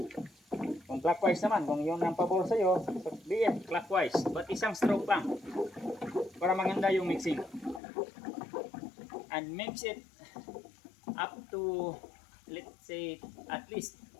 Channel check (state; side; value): drops out; right; at 7.8 s